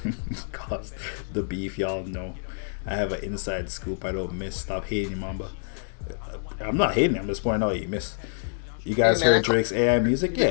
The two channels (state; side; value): silent; right; digital silence